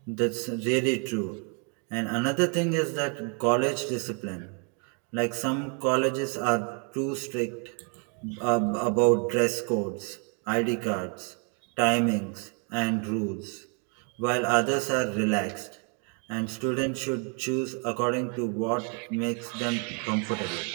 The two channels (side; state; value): left; quieter; 38.7 dB